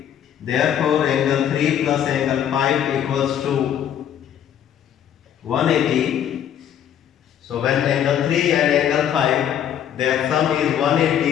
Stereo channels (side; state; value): right; quieter; 9.7 dB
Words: Therefore, angle 3 plus angle 5 equals to 180. So when angle 3 and angle 5, their sum is